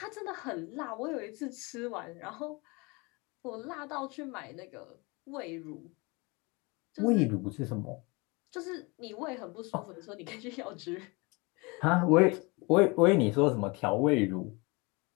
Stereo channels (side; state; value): right; quieter; 27.2 dB